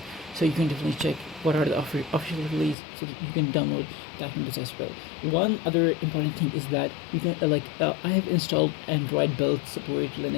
so you can definitely check what are the official release so that you can download that windows as well. One other important thing is that you can I have installed Android build support,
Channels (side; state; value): right; drops out; at 2.8 s